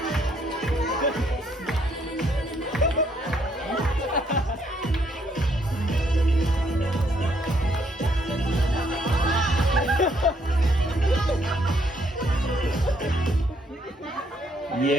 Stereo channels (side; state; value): both; normal; correlation 0.70